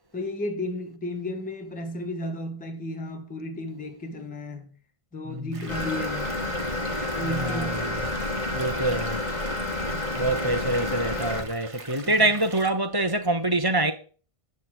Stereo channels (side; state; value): left; late; 1.5 ms